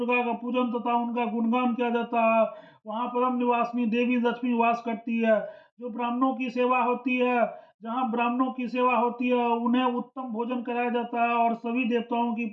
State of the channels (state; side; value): identical; both; correlation 1.00